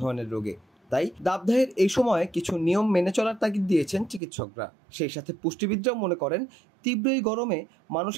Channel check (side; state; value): left; drops out; at 4.2 s